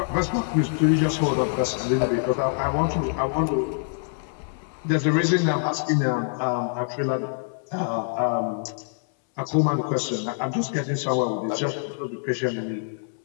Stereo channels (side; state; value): right; silent; 62 dB below the other